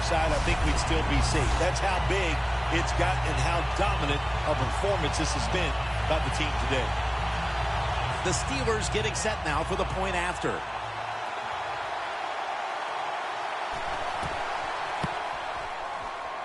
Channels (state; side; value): identical; both; correlation 1.00